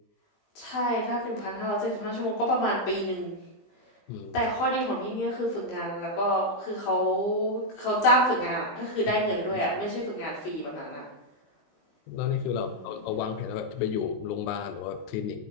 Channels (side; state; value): right; late; 20 ms